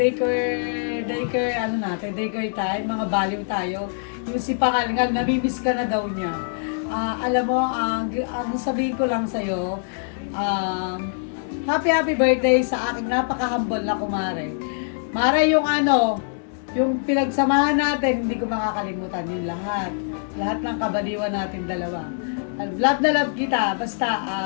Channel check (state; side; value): silent; right; 63 dB below the other